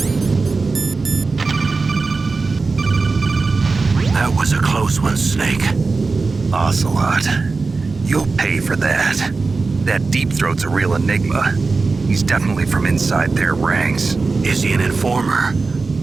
That was a close one, Snake. Ocelot, you'll pay for that. That Deep Throat's a real enigma. He's definitely from inside their ranks. Is he an informer?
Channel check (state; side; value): quieter; left; 4.0 dB